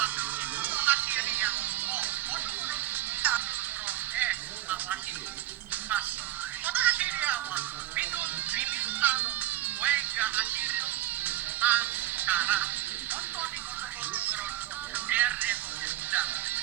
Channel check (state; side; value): quieter; left; 14.3 dB